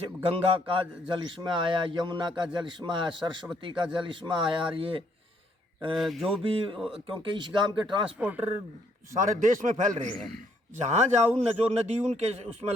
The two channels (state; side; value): normal; both; correlation 0.69